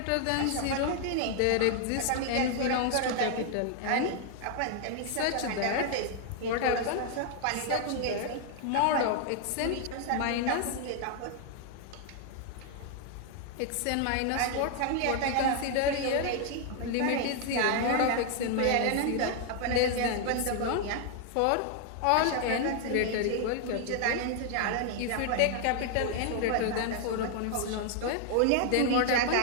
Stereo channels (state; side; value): different; both; correlation 0.00